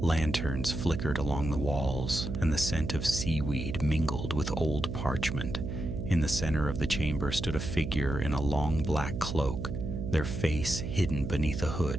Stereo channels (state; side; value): noise; right; hum, 5 dB below the sound